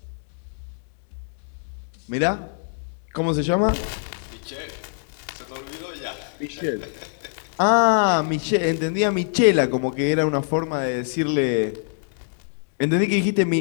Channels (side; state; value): right; silent; digital silence